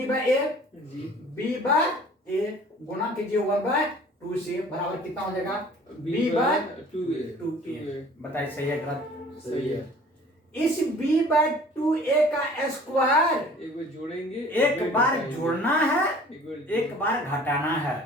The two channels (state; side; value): normal; both; correlation 0.49